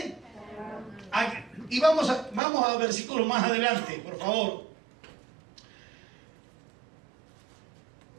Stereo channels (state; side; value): drops out; left; at 2.4 s